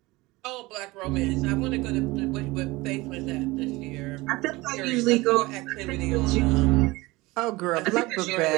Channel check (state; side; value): quieter; left; 21.4 dB